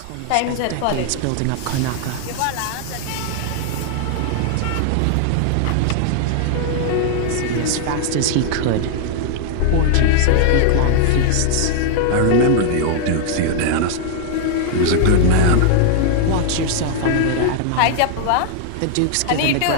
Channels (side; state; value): both; different; correlation -0.01